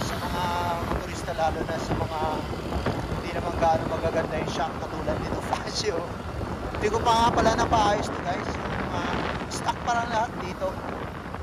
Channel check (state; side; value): identical; both; correlation 1.00